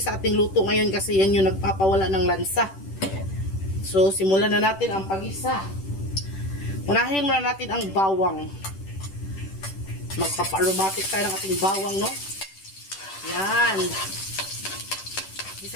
ating luto ngayon kasi yan yung nagpapawala ng lansa. So, simulan na natin ang pag-isa. Unahin muna natin ang bawang. Magpapa-aromatic tayo ng ating bawang, no? Yan.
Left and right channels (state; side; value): late; right; 10 ms